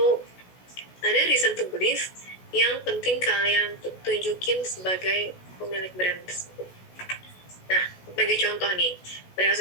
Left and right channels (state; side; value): late; right; 16 ms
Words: ada reason to believe yang penting kalian tunjukin sebagai pemilik brand tersebut. Nah, sebagai contoh nih, brand